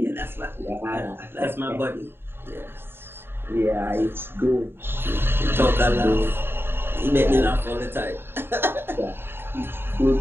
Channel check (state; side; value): late; left; 0.11 ms